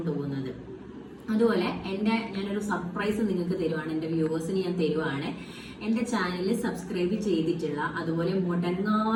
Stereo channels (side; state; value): both; identical; correlation 1.00